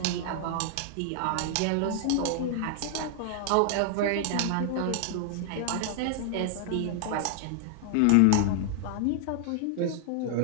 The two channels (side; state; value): both; different; correlation 0.00